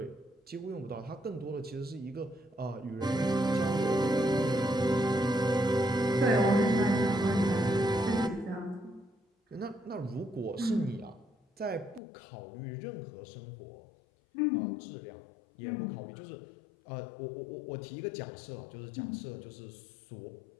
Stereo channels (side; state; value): right; drops out; at 12.0 s